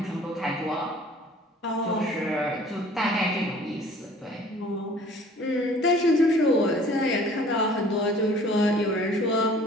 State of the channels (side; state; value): both; normal; correlation 0.51